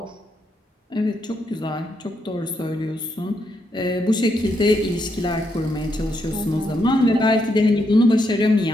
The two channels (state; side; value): normal; both; correlation 0.79